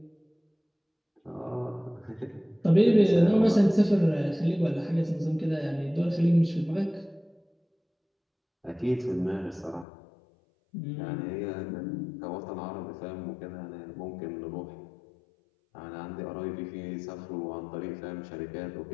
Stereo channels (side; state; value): right; drops out; at 9.9 s